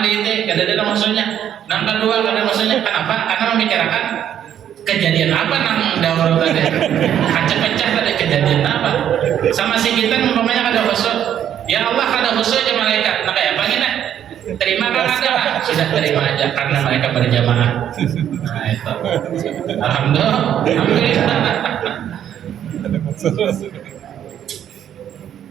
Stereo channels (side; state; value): left; quieter; 10.1 dB